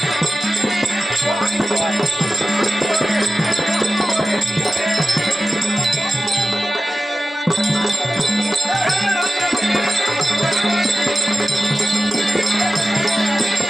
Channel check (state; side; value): normal; both; correlation 0.95